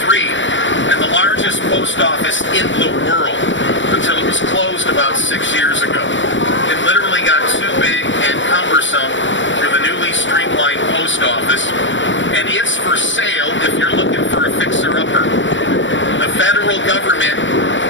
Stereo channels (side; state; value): right; late; 0.55 ms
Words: and the largest post office in the world until it was closed about 6 years ago. It literally got too big and cumbersome for the newly streamlined post office, and it's for sale if you're looking for a fixer-upper. The federal government